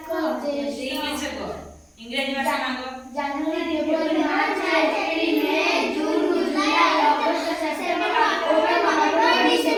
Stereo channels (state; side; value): identical; both; correlation 1.00